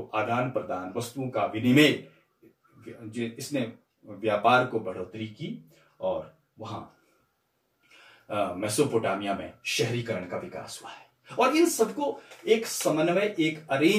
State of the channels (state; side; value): identical; both; correlation 1.00